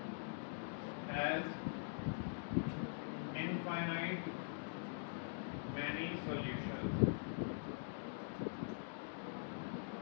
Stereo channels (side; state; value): right; silent; digital silence